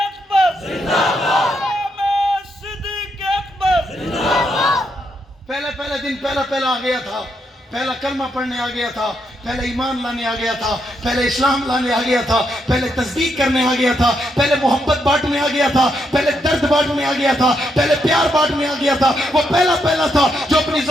पहले दिन पहला आ गया था, पहला कलमा पढ़ने आ गया था, पहले ईमान लाने आ गया था, पहले इस्लाम लाने आ गया था, पहले तस्दीक करने आ गया था, पहले मोहब्बत बांटने आ गया था, पहले दर्द बांटने आ गया था, पहले प्यार बांटने आ गया था। वो पहला था जो अपनी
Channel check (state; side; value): normal; both; correlation 0.79